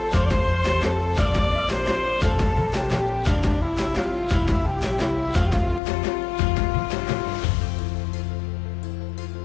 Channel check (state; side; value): drops out; right; at 5.8 s